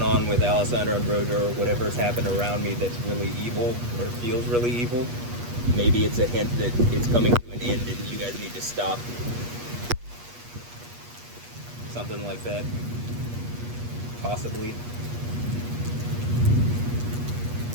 on with Alessandro and Brojo, or whatever's happened around me that's really evil, or feels really evil. Maybe it's a hint that it's coming to an end and you guys need to stop. Something like that. Possibly.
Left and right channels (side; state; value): left; late; 8.3 ms